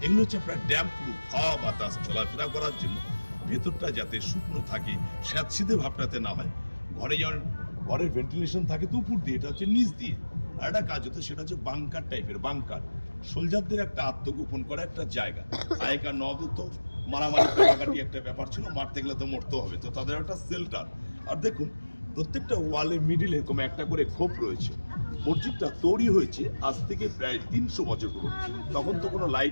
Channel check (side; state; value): both; inverted; correlation -1.00